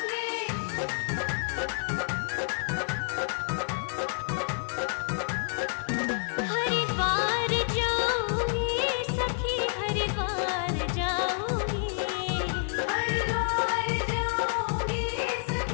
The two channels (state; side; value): silent; right; 59 dB below the other